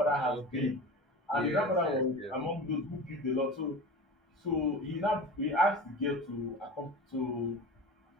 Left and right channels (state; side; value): normal; both; correlation 0.33